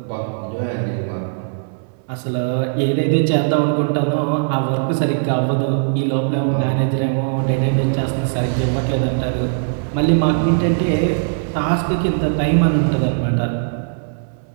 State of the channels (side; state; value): left; silent; digital silence